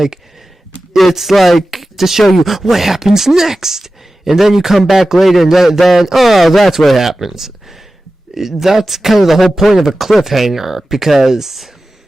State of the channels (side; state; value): both; normal; correlation 0.95